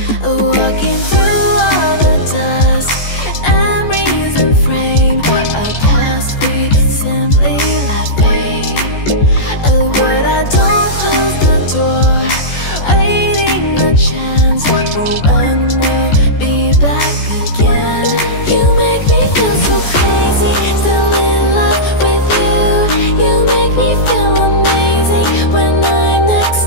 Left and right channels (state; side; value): late; right; 14 ms